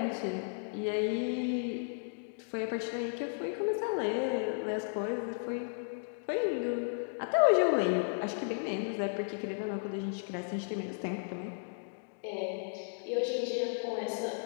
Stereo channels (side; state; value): right; silent; digital silence